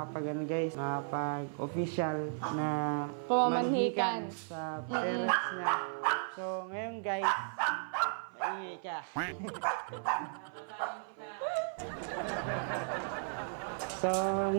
na Pamamanhikan sa parents niya. So, ngayon guys, maingay ka. So,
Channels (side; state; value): left; silent; 54 dB below the other